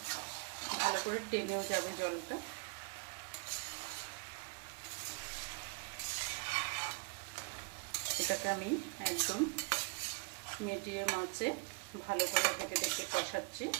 ভালো করে টেনেও যাবে জলটা। এটাকে আমি একদম মিডিয়াম আঁচে ভালো করে ঢেকে ঢেকে কষাচ্ছি।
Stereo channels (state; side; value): quieter; left; 33.7 dB